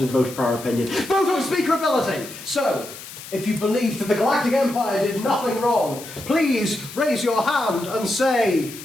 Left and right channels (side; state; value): left; noise; hiss, 14 dB below the sound